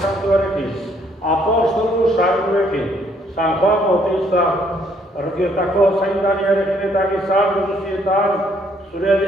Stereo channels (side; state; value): both; normal; correlation 0.67